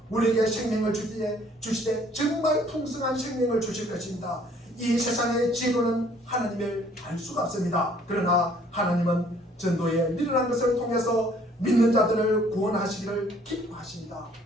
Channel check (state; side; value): normal; both; correlation 0.59